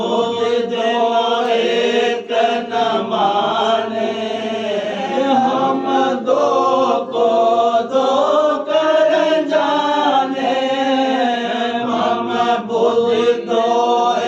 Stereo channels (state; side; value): identical; both; correlation 1.00